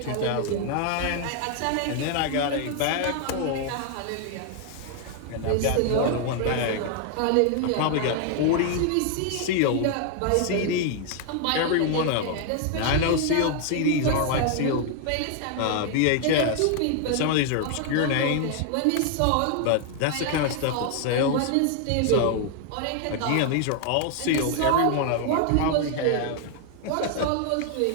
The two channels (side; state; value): both; different; correlation 0.00